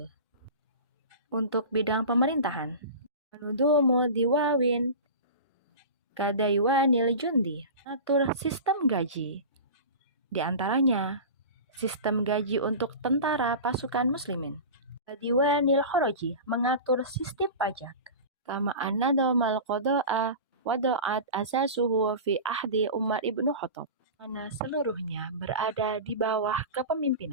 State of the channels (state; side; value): inverted; both; correlation -0.31